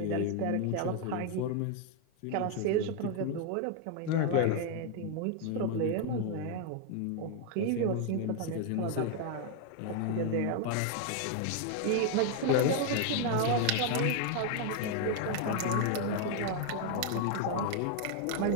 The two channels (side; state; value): both; different; correlation 0.00